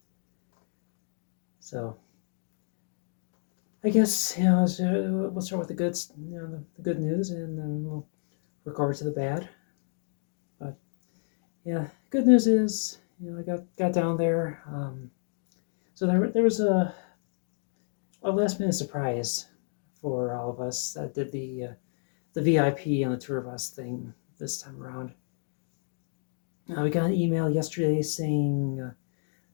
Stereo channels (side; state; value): right; silent; 58 dB below the other